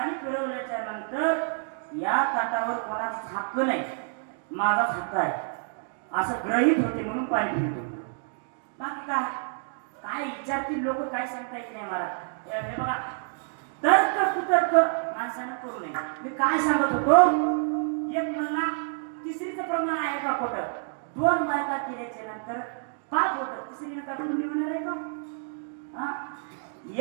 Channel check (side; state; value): left; silent; 59 dB below the other